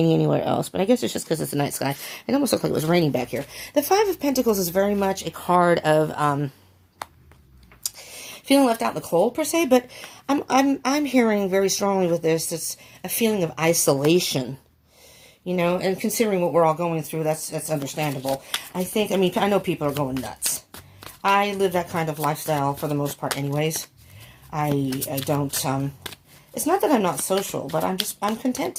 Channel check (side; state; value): both; identical; correlation 1.00